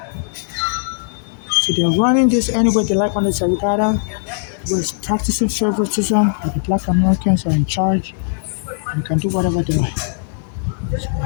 So they're running this anyway they like on the Sarikada was practicing favoritism that the black Americans are in charge and can do whatever they like.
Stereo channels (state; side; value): silent; right; digital silence